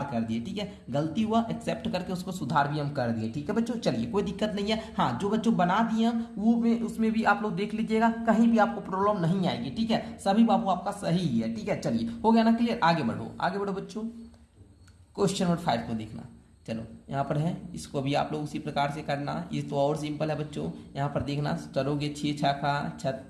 कर दिए, ठीक है। गलती हुआ एक्सेप्ट करके उसको सुधार भी हम कर दिए, ठीक है बच्चों। चलिए कोई दिक्कत नहीं है। हाँ, जो बच्चों बना दिए हम वो उसमें भी आप लोग देख लीजिएगा, कहीं भी आपको प्रॉब्लम नहीं आएगी, ठीक है। सभी बाबू आपका सही है, ठीक है। चलिए हो गया ना क्लियर, आगे बढ़ो बच्चों। क्वेश्चन नंबर 5 को देखना। चलो यहाँ पर है, इसको भी आप लोग उसी प्रकार से करना। ये तो और सिंपल है बच्चों। यहाँ पर देखना, चलोगे 6 छक्का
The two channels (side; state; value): both; identical; correlation 1.00